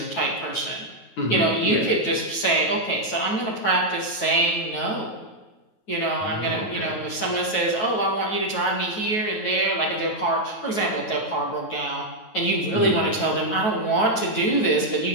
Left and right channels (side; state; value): right; late; 9.3 ms